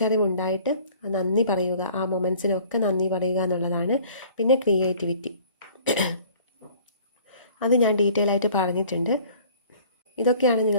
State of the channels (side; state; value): both; inverted; correlation -0.51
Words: നന്ദി പറയുക. ആ മൊമെൻറ്റ്സിനൊക്കെ നന്ദി പറയുക എന്നുള്ളതാണ്. പിന്നെ ക്രിയേറ്റിവിറ്റി, അത് ഞാൻ ഡീറ്റെയിൽ ആയിട്ട് പറഞ്ഞിട്ടുണ്ട്. ഇതൊക്കെയാണ്